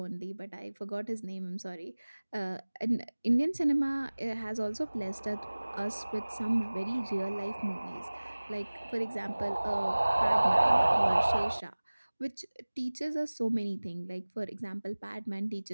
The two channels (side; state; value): both; inverted; correlation -1.00